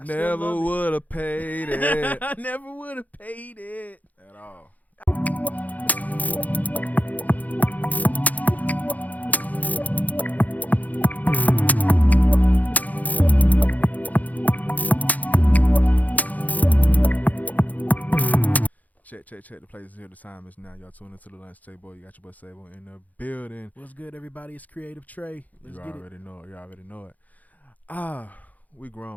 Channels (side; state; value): right; late; 0.078 ms